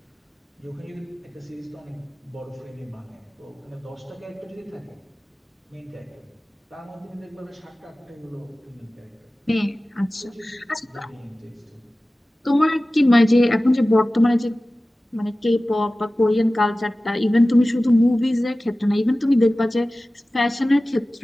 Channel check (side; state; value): both; normal; correlation 0.96